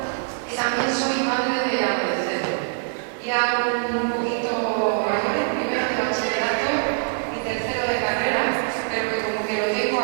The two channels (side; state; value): left; silent; digital silence